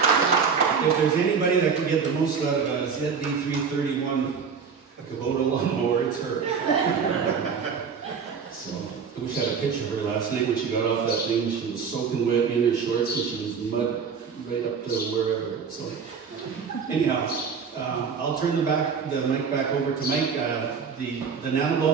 If there's anybody that can get the most out of a ZD 331, a Kubota lawnmower, it's her. So, I wish I had a picture of her last night when she got off that thing. She was soaking wet in her shorts, and she was mud right up to wherever. So, anyhow. I'll turn the mic back over to Mike. The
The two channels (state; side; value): quieter; left; 6.1 dB